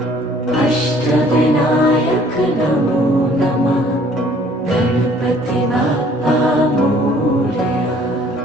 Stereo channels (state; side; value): normal; both; correlation 0.57